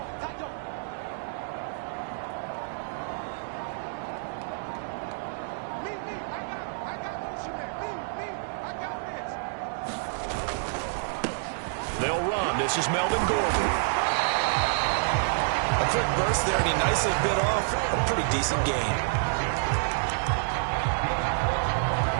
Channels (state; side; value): silent; left; digital silence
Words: They'll run. This is Melvin Gordon. A quick burst there, and he nicely bit off a pretty decent gain.